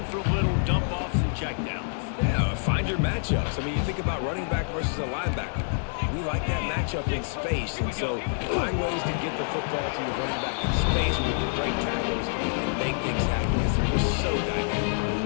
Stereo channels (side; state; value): right; silent; 60 dB below the other